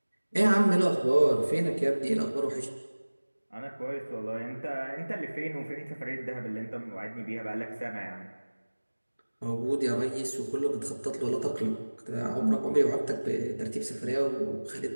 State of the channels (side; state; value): both; inverted; correlation -1.00